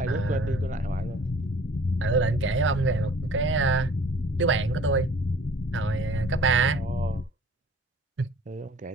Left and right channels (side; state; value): both; normal; correlation 0.50